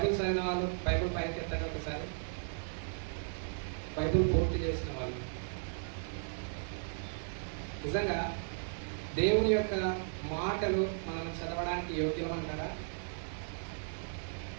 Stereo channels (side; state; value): left; silent; 54 dB below the other